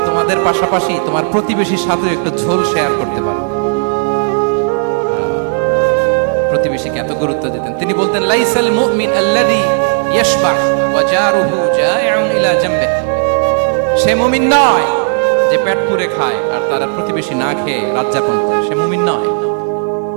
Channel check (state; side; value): silent; left; digital silence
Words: তোমাদের পাশাপাশি তোমার প্রতিবেশীর সাথে একটু ঝোল শেয়ার করতে পারো। প্রতিবেশীকে এত গুরুত্ব দিতেন। তিনি বলতেন, লাইসাল মুমিন আল্লাযী ইয়াশবাহ ওয়া জারুহু জাইউন ইলা জামবিহি, সে মুমিন নয় যে পেট পুরে খায় আর তার প্রতিবেশী না খেয়ে রাত যাপন করে, সে মুমিন নয়।